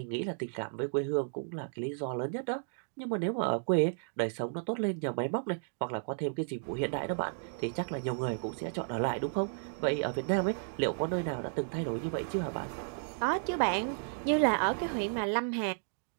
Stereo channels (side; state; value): left; silent; digital silence